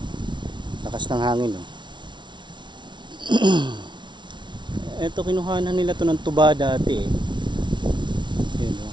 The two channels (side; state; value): left; late; 0.23 ms